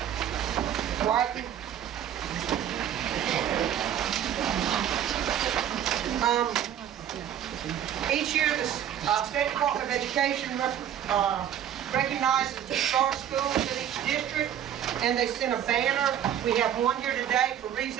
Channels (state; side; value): quieter; left; 10.1 dB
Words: Whiten. Each year the State Department of Education recognizes the star schools in each district, and they send a banner. We have one here today for Reeves